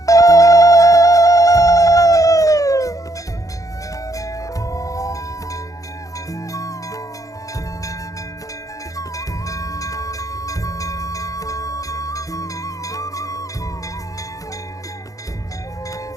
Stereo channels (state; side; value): late; right; 0.17 ms